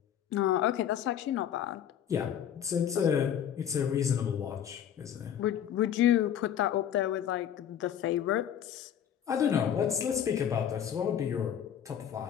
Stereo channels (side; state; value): right; quieter; 9.5 dB